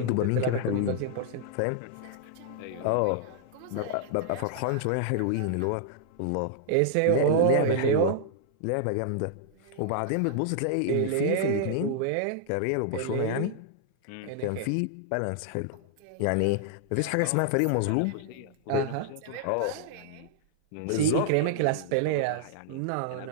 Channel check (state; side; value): different; both; correlation -0.01